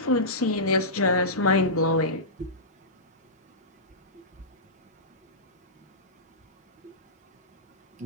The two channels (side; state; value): both; normal; correlation -0.18